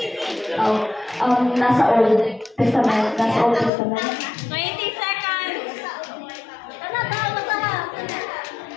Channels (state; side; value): drops out; right; at 3.7 s